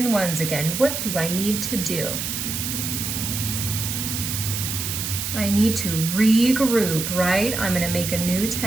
ones again. What do I need to do? I need to regroup, right? I'm gonna make a new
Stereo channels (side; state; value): right; noise; hiss, 3 dB below the sound